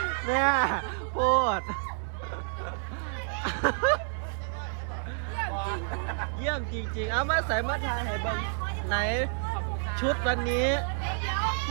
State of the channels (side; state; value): left; silent; 58 dB below the other